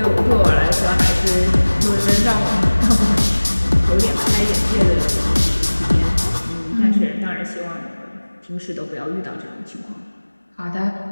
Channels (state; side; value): inverted; both; correlation -1.00